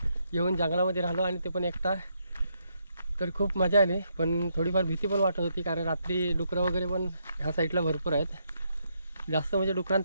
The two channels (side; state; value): both; inverted; correlation -0.77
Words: येऊन जंगलामध्ये राहिलो आणि ते पण एकटा. तर खूप मजा आली, पण थोडीफार भीती पण वाटत होती, कारण रात्री डुकरं वगैरे पण ह्या साईडला भरपूर आहेत. जास्त म्हणजे